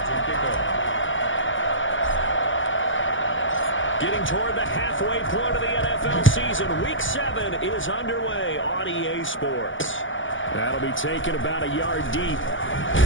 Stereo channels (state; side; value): late; right; 0.56 ms